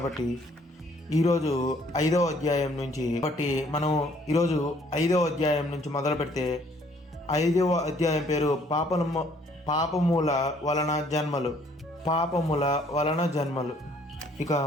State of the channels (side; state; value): both; normal; correlation 0.62